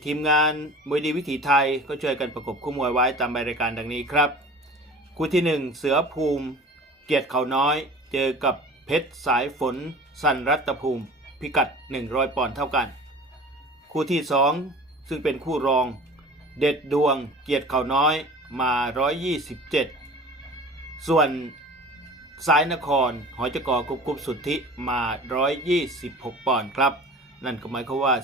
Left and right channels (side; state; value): both; normal; correlation 0.41